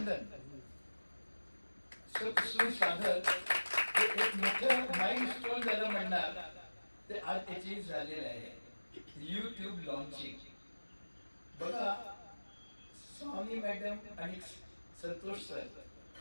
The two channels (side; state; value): both; inverted; correlation -1.00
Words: सतसूर साधक हे एक मोठं माइलस्टोन ज्याला म्हणणार ते आज अचीव झालेलं आहे. YouTube लॉन्चिंग बघा, स्वामी मॅडम आणि संतोष सर